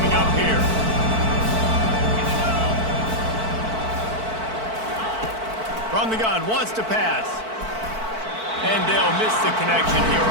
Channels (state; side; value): late; left; 4.5 ms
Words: up here. From the gun, wants to pass. And they'll miss the connection here